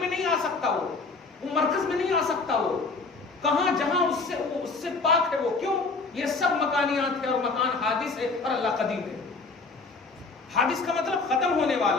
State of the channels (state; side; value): quieter; right; 3.9 dB